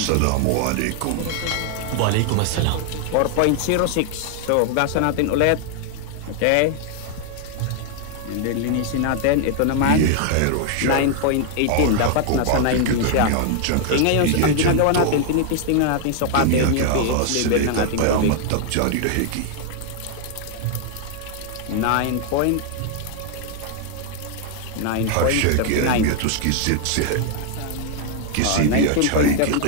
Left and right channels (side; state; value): both; different; correlation 0.00